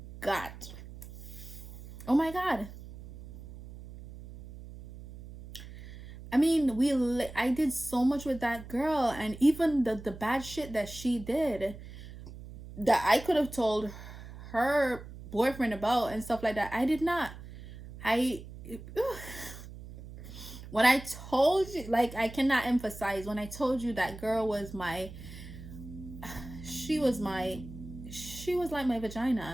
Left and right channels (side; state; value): right; noise; hum, 14 dB below the sound